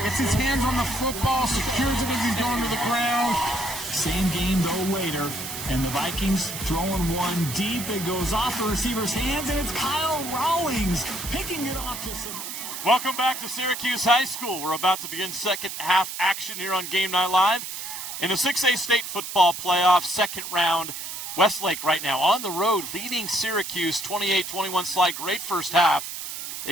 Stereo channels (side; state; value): right; noise; hiss, 7 dB below the sound